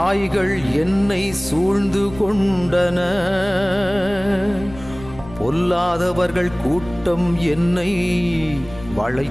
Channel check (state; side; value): noise; left; rumble, 17 dB below the sound